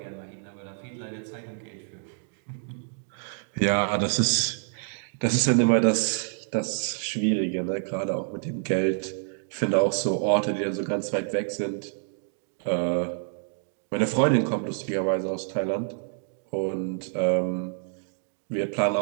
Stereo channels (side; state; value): left; silent; digital silence